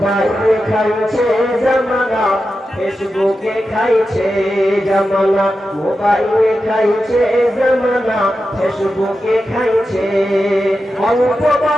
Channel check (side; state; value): both; normal; correlation 0.90